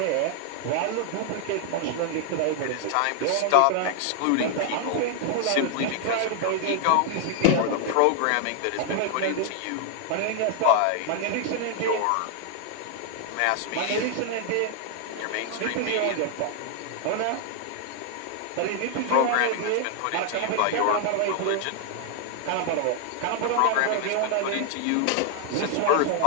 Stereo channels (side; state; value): both; different; correlation 0.00